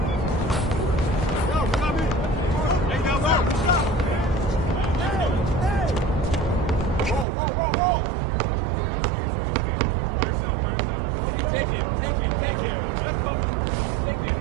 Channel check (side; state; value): left; drops out; at 7.2 s